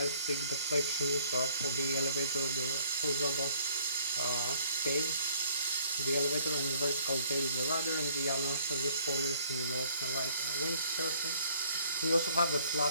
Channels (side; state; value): both; inverted; correlation -0.59